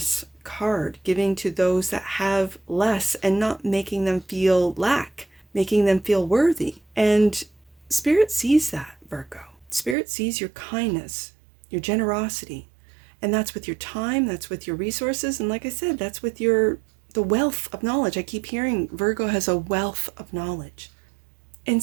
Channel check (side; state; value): left; drops out; at 10.0 s